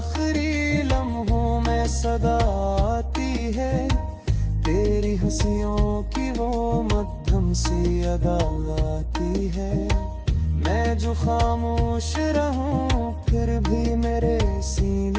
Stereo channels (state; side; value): identical; both; correlation 1.00